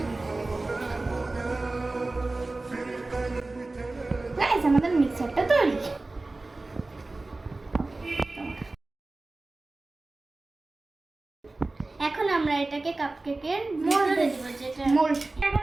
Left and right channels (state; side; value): quieter; left; 3.1 dB